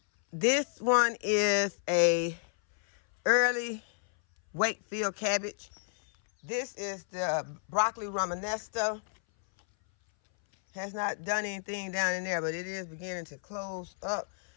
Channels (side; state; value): right; silent; 57 dB below the other